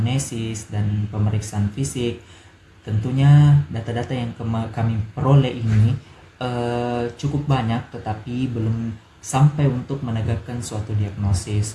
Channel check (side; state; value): both; identical; correlation 1.00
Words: dan pemeriksaan fisik, tentunya data-data yang kami peroleh ini cukup banyak, tetapi belum sampai untuk menegakkan suatu